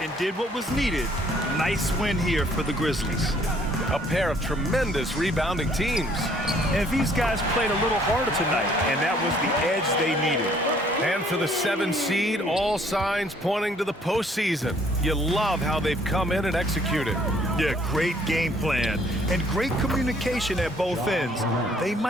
and did what was needed. Nice win here for the Grizzlies. A pair of tremendous rebounding teams. And these guys played a little harder tonight, and that was the edge they needed. And for the 7 seed, all signs pointing to the postseason. You love how they've come in and executed. Yeah, great game plan and great communication at both ends. They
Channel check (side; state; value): both; normal; correlation 0.61